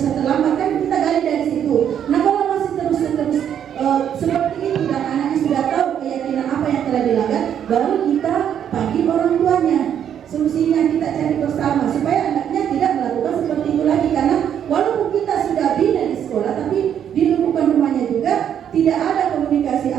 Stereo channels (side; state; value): left; quieter; 9.2 dB